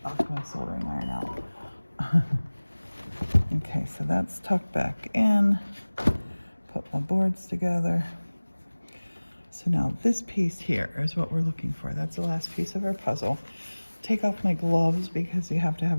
knocked my soldering iron out. Okay, so that's tucked back in. Put my boards together. So now this piece here is what we're looking for. That's the last piece of our puzzle. Take off my gloves because you have to have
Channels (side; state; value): both; inverted; correlation -1.00